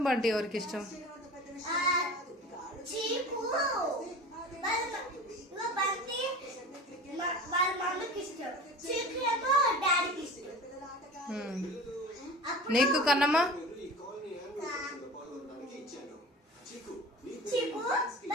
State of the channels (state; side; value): normal; both; correlation 0.36